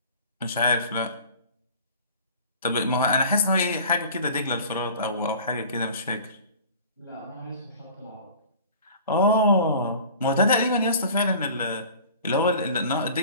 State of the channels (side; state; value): both; inverted; correlation -0.44